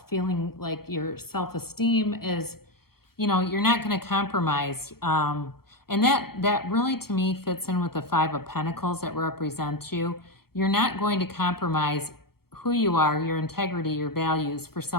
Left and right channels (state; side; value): late; right; 0.94 ms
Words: feeling like your self-esteem is, you're not going to compromise. And that really, to me, fits in with the Five of Pentacles that represent you. You're not going to compromise who you are, your integrity, your values for